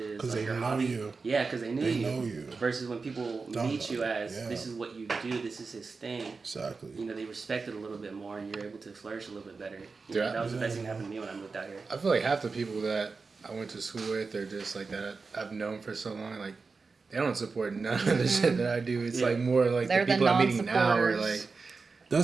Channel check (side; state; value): left; quieter; 4.4 dB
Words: as Because like they your know hobby. you. Yeah, because they They know you. Versus when people Don't meet know you you. as Yeah. this is what you do, this is his thing. Exactly. They respect it a little bit more, and you're able to flourish a little bit better. Yeah. That was the best thing that happened to me when I moved out here. I feel like half the people that I went to school with or just like that I've known for so long, like they don't support none of the shit that I do. It's like more like They're the the people I'm meeting now are non-supporters. like,